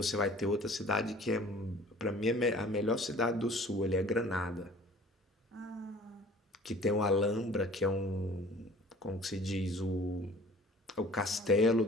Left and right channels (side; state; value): both; normal; correlation 0.49